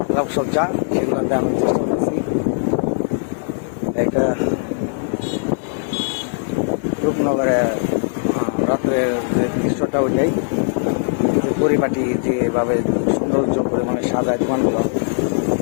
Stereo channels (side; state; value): right; silent; digital silence